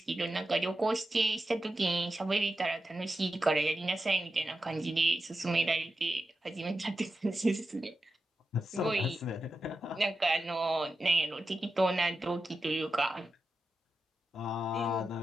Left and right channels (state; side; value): normal; both; correlation 0.90